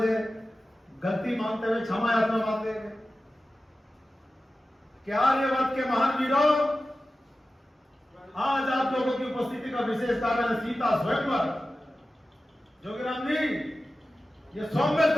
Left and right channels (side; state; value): both; normal; correlation 0.94